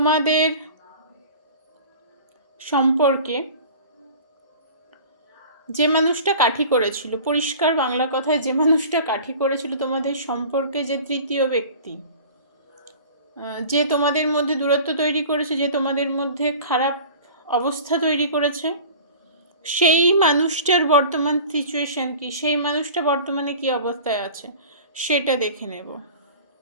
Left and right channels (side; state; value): both; inverted; correlation -0.41